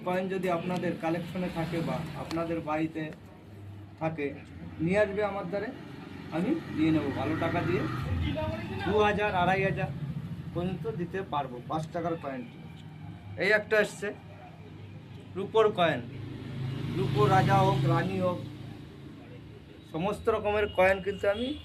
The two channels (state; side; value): identical; both; correlation 1.00